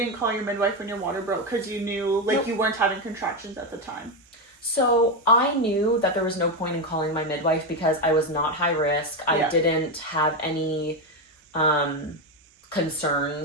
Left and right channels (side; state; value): both; normal; correlation 0.10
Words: call your midwife when your water broke because you knew, like, you weren't having contractions at the time. So I knew that there was no point in calling my midwife because I was not high risk. I didn't have any